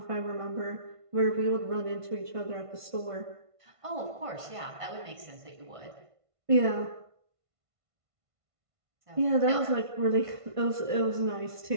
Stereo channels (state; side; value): late; left; 1.5 ms